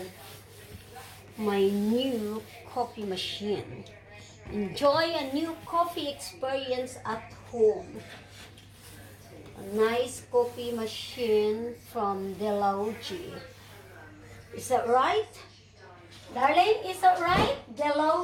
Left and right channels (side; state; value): both; identical; correlation 1.00